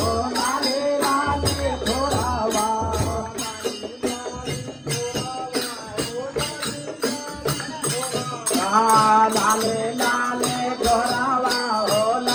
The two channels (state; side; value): identical; both; correlation 1.00